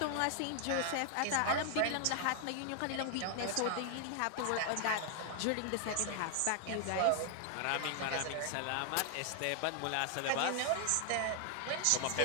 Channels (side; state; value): both; different; correlation 0.00